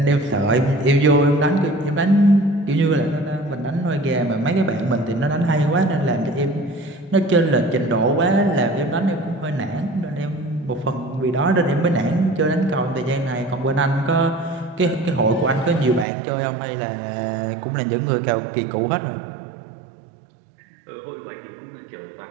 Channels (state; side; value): drops out; left; at 16.1 s